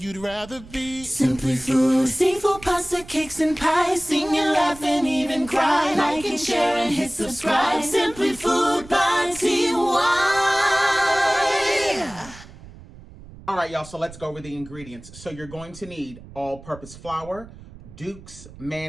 rather be. Simply Food. Seafood, pasta, cakes, and pies. Sing and laugh and even cry. Like and share and hit subscribe. Simply Food by TY. All right, y'all, so let's go over the ingredients. So you're going to need all-purpose flour, Duke's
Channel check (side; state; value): right; noise; rumble, 18 dB below the sound